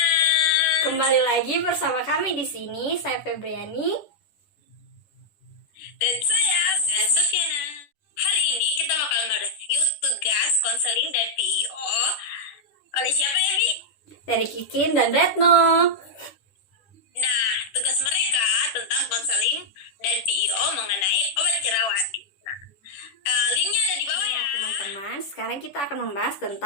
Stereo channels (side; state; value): right; late; 10 ms